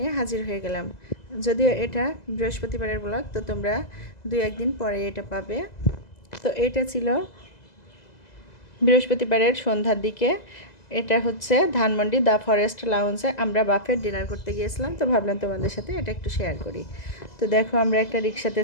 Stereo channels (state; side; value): late; right; 2.0 ms